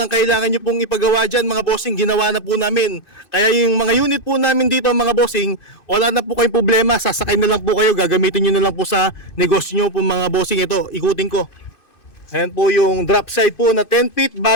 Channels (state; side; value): late; right; 2.5 ms